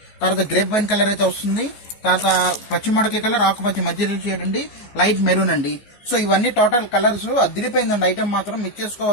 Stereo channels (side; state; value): right; late; 15 ms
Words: తర్వాత గ్రేప్ వైన్ కలర్ అయితే వస్తుంది, తర్వాత పచ్చిమడకి కలర్, ఆకుపచ్చి మధ్య షేడ్ అండి, లైట్ మెరూన్ అండి. సో ఇవన్నీ టోటల్ కలర్స్. అదిరిపోయిందండి ఐటమ్, మాత్రం మిస్